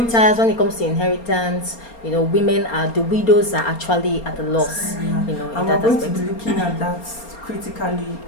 When it comes to inheritance, you know, the widows are actually at a loss. You know, in and that we're going aspect. to be looking at that critically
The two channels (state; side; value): late; right; 4.3 ms